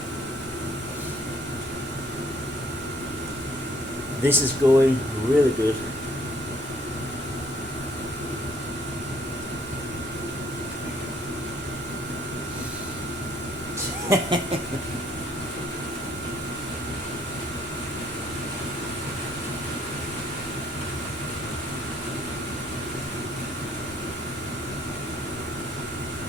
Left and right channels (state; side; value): normal; both; correlation 0.63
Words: This is going really good.